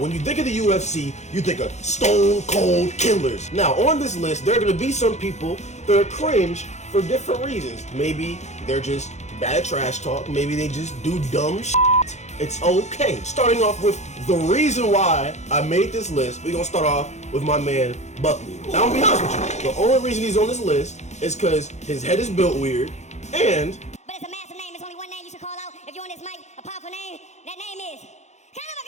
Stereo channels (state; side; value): late; right; 0.33 ms